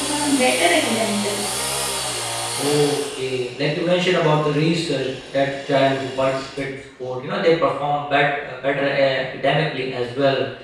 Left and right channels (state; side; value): identical; both; correlation 1.00